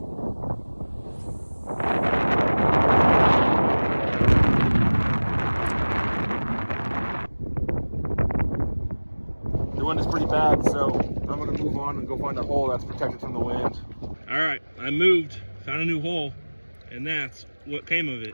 The wind is pretty bad, so I'm gonna move on and go find a hole that's protected from the wind. All right, I moved, found a new hole, and that's what came of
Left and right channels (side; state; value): both; inverted; correlation -1.00